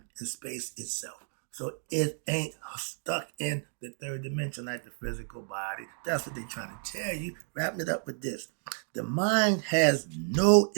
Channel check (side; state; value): left; silent; 57 dB below the other